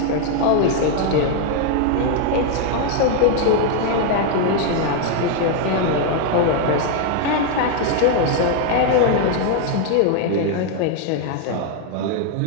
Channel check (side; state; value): both; different; correlation 0.00